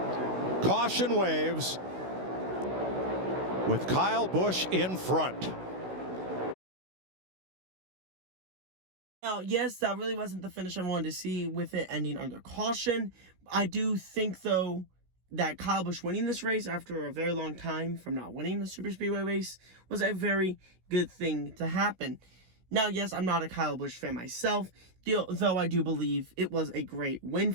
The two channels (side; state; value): left; late; 16 ms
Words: Caution waves with Kyle Busch in front. Now, yes, that really wasn't the finish I wanted to see with it ending under caution. I do think, though, that Kyle Busch winning this race after a very long time from not winning the Super Speedway race was a very good thing to happen. Now, yes, I'm not a Kyle Busch fan myself, though I do believe it was a great win